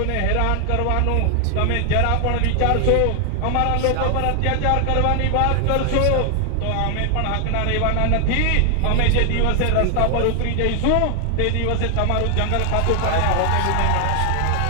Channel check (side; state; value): both; different; correlation 0.00